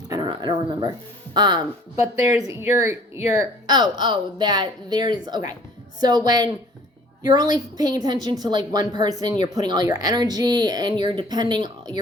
I don't know. I don't remember. But there's okay. So when you're only paying attention to like one person, you're putting all your energy and you're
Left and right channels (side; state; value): both; normal; correlation 0.53